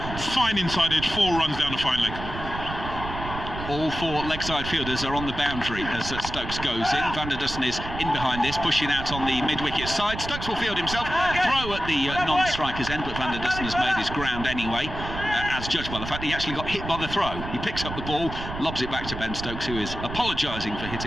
fine inside edge, 4 runs down the fine leg. All 4 leg side fielders are on the boundary as Stokes goes in. Van der Dussen is in behind this, pushing out on the mid-wicket side. Stokes will field himself, throw at the non-striker's end, but Van der Dussen has made his ground anyway, as judged by the fact that he actually got hit by the throw. He picks up the ball, lobs it back to Ben Stokes, who is apologising for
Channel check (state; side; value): noise; right; rumble, 8 dB below the sound